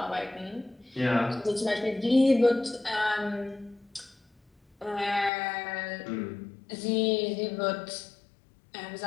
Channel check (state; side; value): drops out; right; at 5.3 s